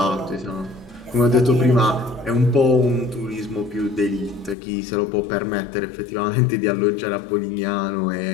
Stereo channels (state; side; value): drops out; right; at 4.5 s